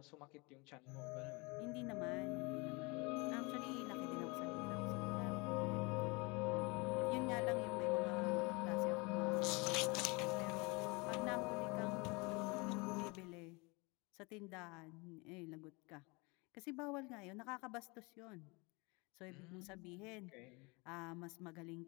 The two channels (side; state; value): right; quieter; 27.6 dB